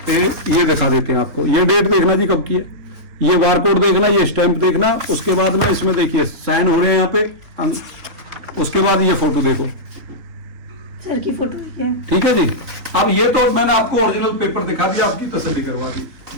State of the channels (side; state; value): left; late; 3.6 ms